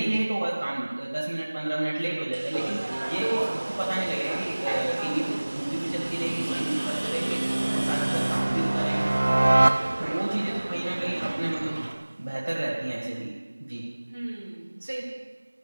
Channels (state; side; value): inverted; both; correlation -1.00